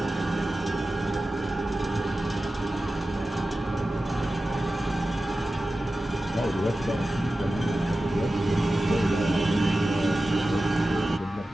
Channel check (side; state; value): both; normal; correlation 0.94